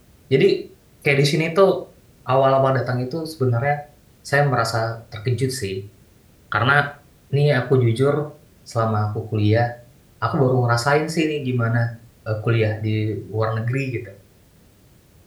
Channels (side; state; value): both; identical; correlation 1.00